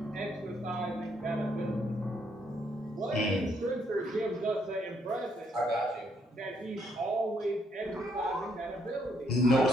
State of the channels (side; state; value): both; normal; correlation 0.72